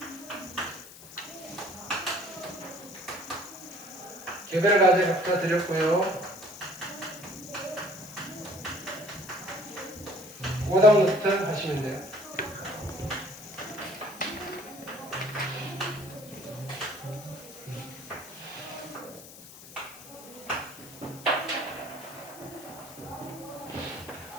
개별 과제 각자 드렸고요. 오답 노트 하시면 돼요.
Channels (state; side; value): noise; left; hiss, 17 dB below the sound